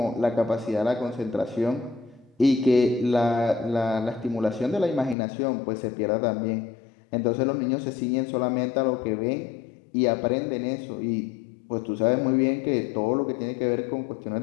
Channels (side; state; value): right; drops out; at 5.2 s